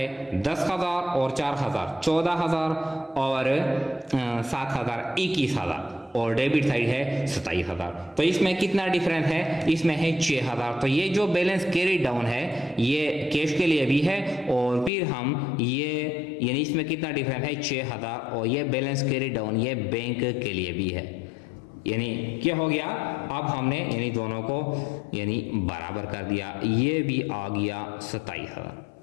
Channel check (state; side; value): drops out; right; at 14.9 s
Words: 10,000 और 4,000 14,000 और 7,000 21,000 और डेबिट साइड है 27,000। तो इसमें कितना डिफरेंस है, इसमें है 6,000। तो ये जो बैलेंस कैरी डाउन है ये कैश के लिए भी है और फिर हम ये यानी इसमें कितना डिफरेंस है 6,000 और ये बैलेंस कैरी डाउन ये बैंक के लिए भी है। यानी क्या हो गया, अब हमने यानी दोनों को यानी बराबर कर दिया, ये भी आ गया 27,000।